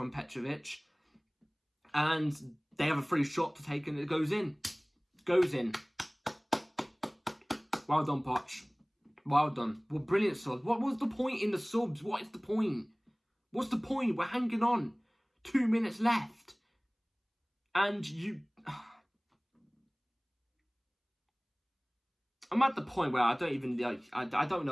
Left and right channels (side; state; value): both; identical; correlation 1.00